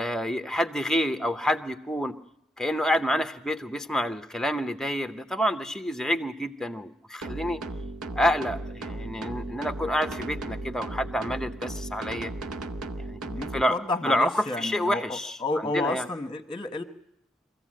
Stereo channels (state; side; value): normal; both; correlation 0.79